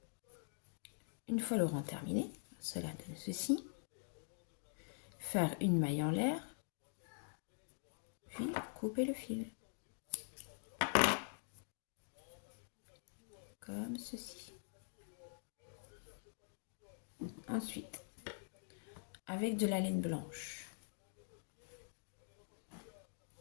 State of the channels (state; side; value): silent; right; digital silence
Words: Une fois le rang terminé, cela donne ceci. Faire une maille en l'air, puis couper le fil. Comme ceci. Ensuite, avec de la laine blanche,